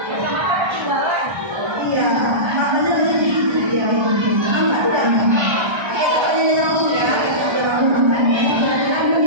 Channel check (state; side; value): late; left; 1.3 ms